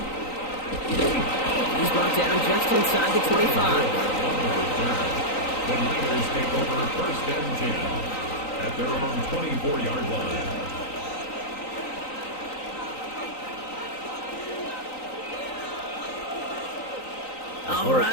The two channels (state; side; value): late; right; 3.9 ms